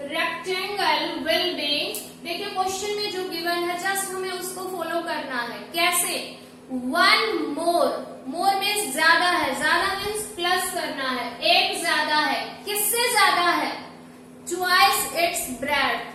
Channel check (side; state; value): both; identical; correlation 1.00